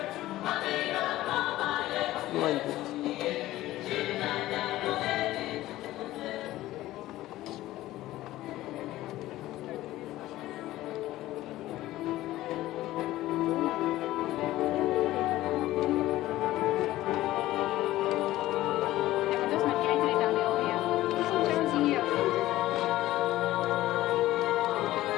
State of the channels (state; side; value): quieter; right; 15.8 dB